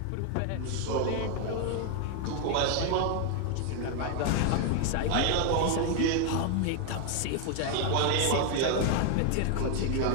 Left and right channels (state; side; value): different; both; correlation 0.01